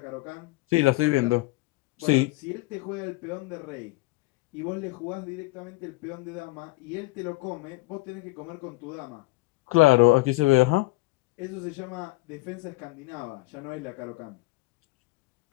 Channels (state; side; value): quieter; right; 21.4 dB